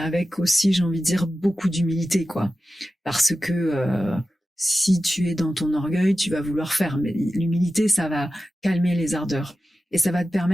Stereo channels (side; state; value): both; normal; correlation 0.93